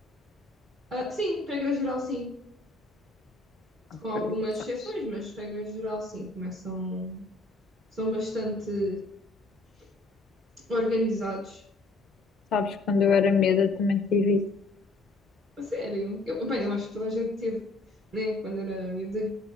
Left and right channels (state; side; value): quieter; right; 3.0 dB